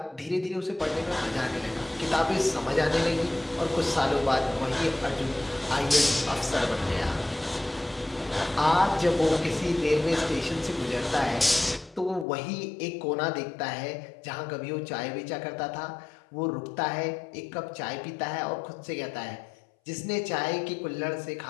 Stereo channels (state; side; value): drops out; right; at 12.2 s